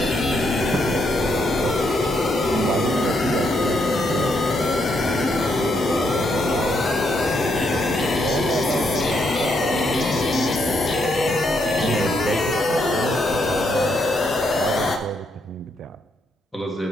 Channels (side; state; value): both; normal; correlation 0.76